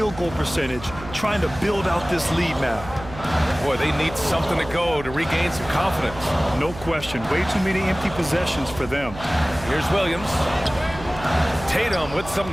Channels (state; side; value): noise; right; hum, 14 dB below the sound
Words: goal percentage, trying to build out this lead now. Boy, they need something to go to regain some confidence. No question. Way too many empty possessions for them. Here's Williams. Tatum with some